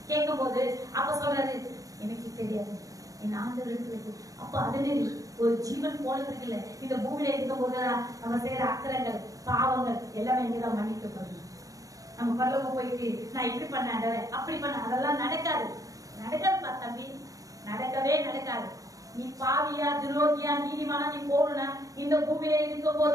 கேட்கும் போது அப்ப சொல்றாரு, எனக்கு தெரியாது என் ஆண்டவர் இருக்கு. அப்ப அதனே ஒரு ஜீவன் போனதுக்கு இல்ல, இந்த பூமியில இருக்கும் போதுதான் நம்ம செய்யற அக்கறங்கள் பாவங்கள் எல்லாமே இங்கதான் மன்னிக்கப்படும். நம்ம பரலோகம் போயிட்டு நான் இப்படி பண்ண அப்படி பண்ண அதெல்லாம் நடக்காது. நடக்காதுப்பா தம்பி, நடக்கவே நடக்காது. நீ பாவியா துரோகியா நீதிமானா நீ போகணும்னா இந்த பூமியில இருக்கும்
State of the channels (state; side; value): late; left; 0.17 ms